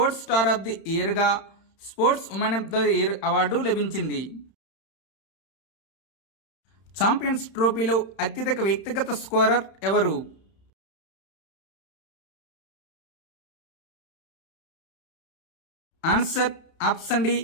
star of the ఇయర్గా sports woman of the year award లభించింది. ఛాంపియన్స్ ట్రోఫీలో అత్యధిక వ్యక్తిగత స్కోరర్ ఎవరు? Answer option D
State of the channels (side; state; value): right; late; 31 ms